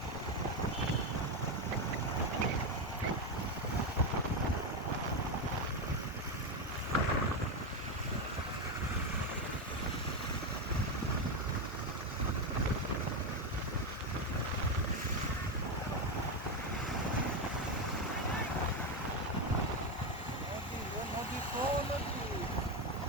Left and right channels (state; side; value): normal; both; correlation 0.10